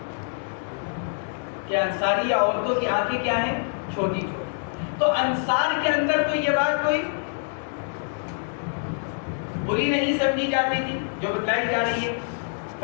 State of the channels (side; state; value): right; silent; 61 dB below the other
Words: کہ انصاری عورتوں کی آنکھیں کیا ہیں, چھوٹی چھوٹی. تو انصار کے اندر تو یہ بات کوئی بری نہیں سمجھی جاتی تھی جو بتلائی جا رہی ہے.